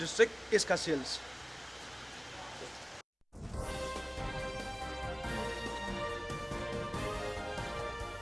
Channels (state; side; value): identical; both; correlation 1.00